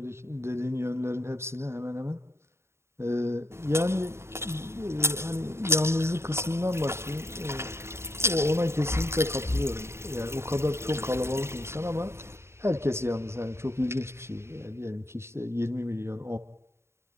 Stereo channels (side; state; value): left; late; 0.13 ms